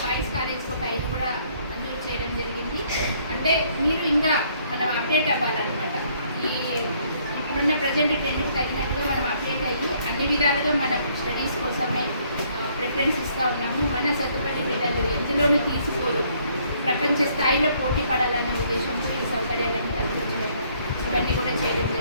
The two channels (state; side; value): inverted; both; correlation -0.65